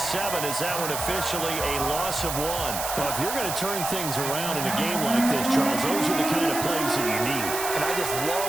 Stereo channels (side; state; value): right; noise; hiss, 4 dB below the sound